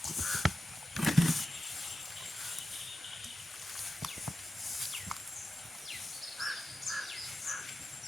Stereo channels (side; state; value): both; normal; correlation 0.91